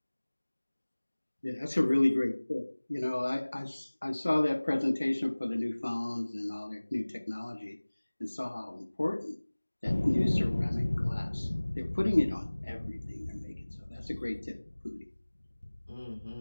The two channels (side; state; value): both; inverted; correlation -1.00